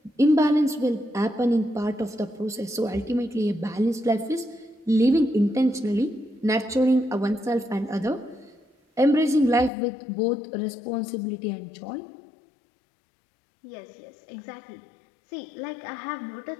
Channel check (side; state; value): right; drops out; at 9.7 s